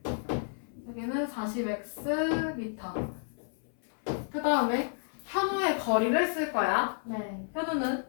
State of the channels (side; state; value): right; silent; 57 dB below the other